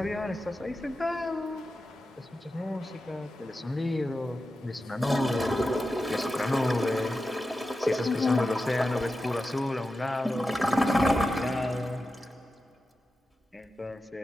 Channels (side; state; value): both; normal; correlation 0.91